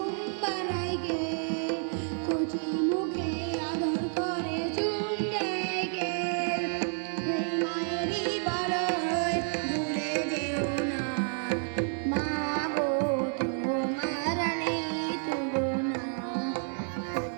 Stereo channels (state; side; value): silent; left; 58 dB below the other